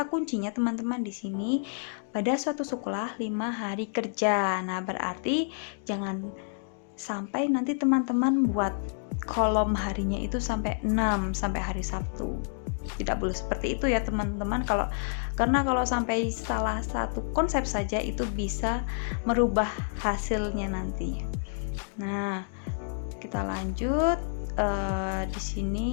kuncinya teman-teman di sini, pada suatu sekolah 5 hari kerja. Nah, berarti jangan sampai nanti teman-teman buat kolom harinya itu sampai 6 sampai hari Sabtu. Tidak boleh seperti itu ya teman-teman, karena kalau sampai salah satu konsep saja itu bisa merubah hasilnya nanti. Nah, kita lanjut. Di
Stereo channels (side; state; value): right; silent; digital silence